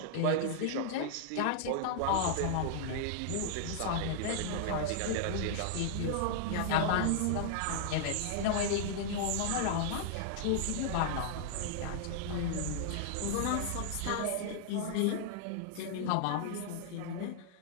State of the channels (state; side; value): different; both; correlation -0.01